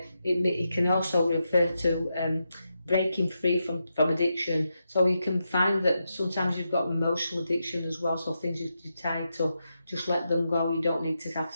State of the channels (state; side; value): inverted; both; correlation -0.86